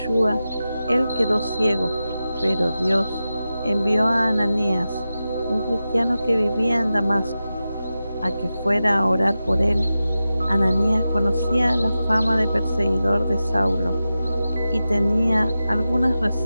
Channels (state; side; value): inverted; both; correlation -0.93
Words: él quedó ciego, pero Dios envió a Ananías, un cristiano que vivía en Damasco, a que fuera a orar por él. Ananías conocía la fama de perseguidor de Saulo y tenía algunas